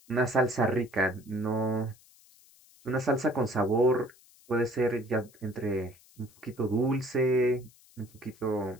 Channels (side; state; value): left; noise; hiss, 27 dB below the sound